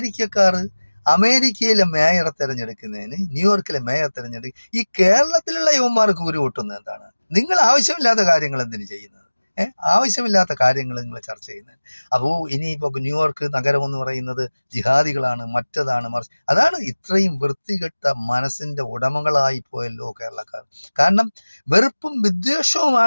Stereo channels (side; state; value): both; inverted; correlation -1.00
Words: അമേരിക്കയിലെ മേയറെ തെരഞ്ഞെടുക്കുന്നതിന്, ന്യൂയോർക്കിലെ മേയർ തെരഞ്ഞെടുക്കുക, ഈ കേരളത്തിലുള്ള യുവന്മാർക്ക് ഉരു പൊട്ടുന്നത് എന്താണ്? നിങ്ങൾ ആവശ്യമില്ലാത്ത കാര്യങ്ങൾ എന്തിനു ചെയ്യുന്നത്? ആവശ്യമില്ലാത്ത കാര്യങ്ങൾ നിങ്ങൾ ചർച്ച ചെയ്യുന്നത്. അപ്പോൾ ഇനിയിപ്പോൾ ന്യൂയോർക്ക് നഗരം എന്ന് പറയുന്നത് ജിഹാദികളാണ്, മറ്റതാണ്, മറിച്ച് അതാണ്. ഇത്രയും വൃത്തികെട്ട മനസ്സിന്റെ ഉടമകളായി പോയല്ലോ കേരളക്കാർ. കാരണം വെറുപ്പും